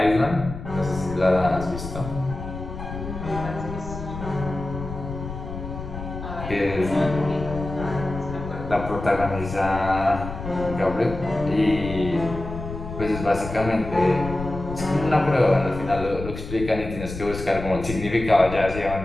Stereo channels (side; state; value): left; noise; rumble, 9 dB below the sound